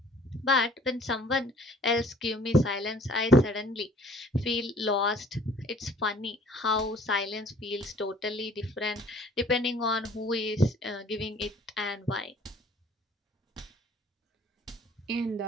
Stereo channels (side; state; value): both; normal; correlation 0.55